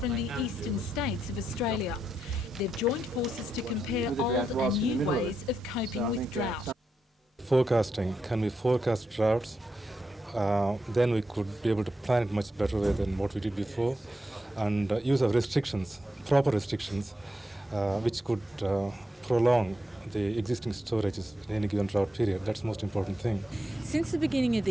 the eastern states of Australia. They've joined forces to compare old and new ways of coping with drought. Forecasting, can we forecast droughts? Then we could be able to plan it much better way than what we did before, and use of restrictions, proper restrictions, which could prolong the existing storages in any given drought period. That's the most important thing. Since the beginning of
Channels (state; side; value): normal; both; correlation 0.84